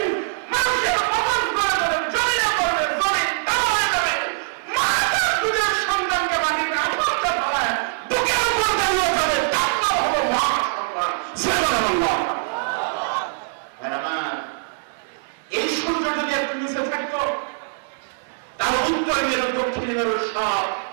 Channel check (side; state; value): left; silent; 64 dB below the other